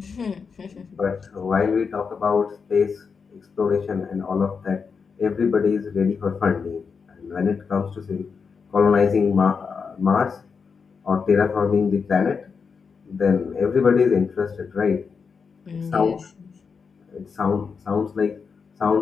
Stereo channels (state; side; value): quieter; right; 5.6 dB